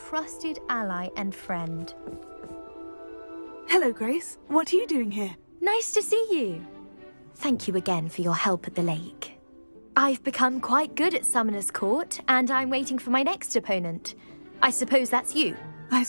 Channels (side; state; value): both; inverted; correlation -1.00